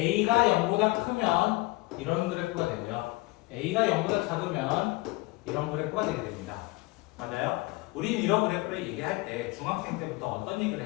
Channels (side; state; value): right; quieter; 22.3 dB